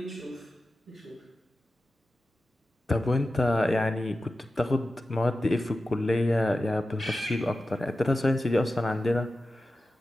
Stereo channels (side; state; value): both; normal; correlation 0.93